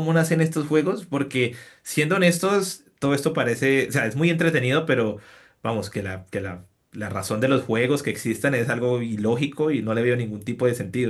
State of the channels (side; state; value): both; identical; correlation 1.00